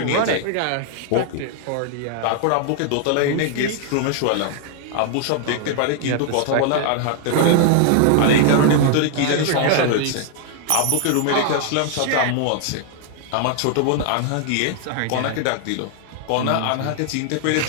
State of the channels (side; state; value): both; different; correlation 0.00